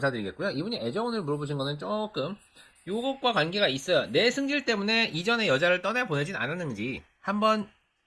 이분이 애정운을 물어보신 거는 조금 요것과 관계가 있어요. 내 승질 때문에 이전에 여자를 떠나보내진 않았는지 한번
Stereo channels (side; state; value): both; identical; correlation 1.00